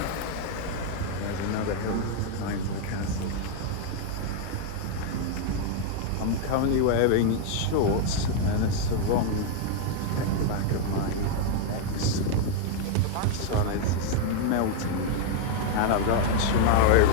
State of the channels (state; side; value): different; both; correlation 0.00